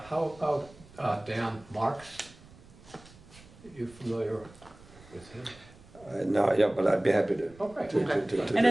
about Dan Marks? Are you familiar with him? No, yeah, but I'd be happy to. Oh, great. And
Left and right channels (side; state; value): right; noise; rumble, 23 dB below the sound